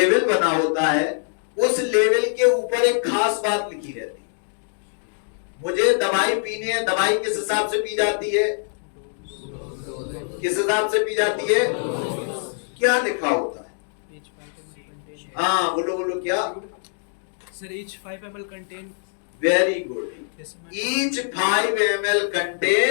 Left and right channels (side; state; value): right; silent; digital silence